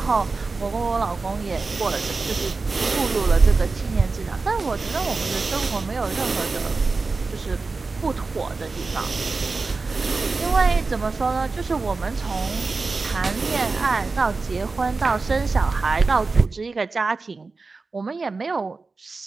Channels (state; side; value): quieter; left; 4.0 dB